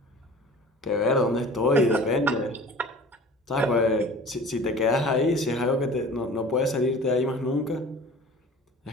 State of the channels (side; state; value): both; normal; correlation 0.43